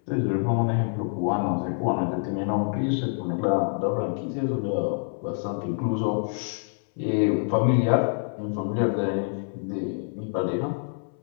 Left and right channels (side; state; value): right; silent; 61 dB below the other